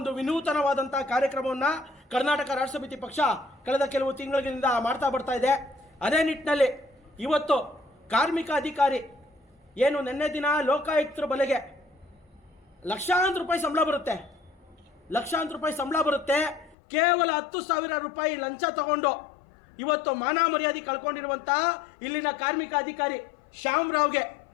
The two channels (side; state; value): right; drops out; at 16.8 s